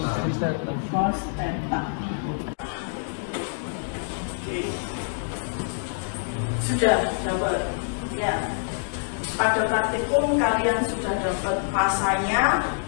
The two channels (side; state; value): right; silent; digital silence